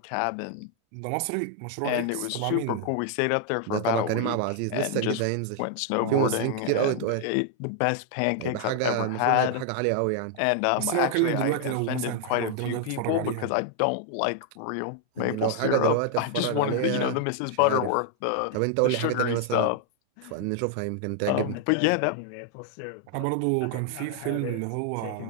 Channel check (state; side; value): different; both; correlation 0.00